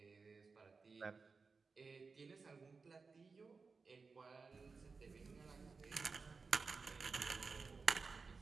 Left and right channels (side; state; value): left; quieter; 4.6 dB